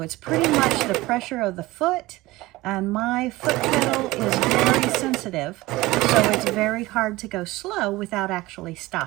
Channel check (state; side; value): quieter; left; 19.5 dB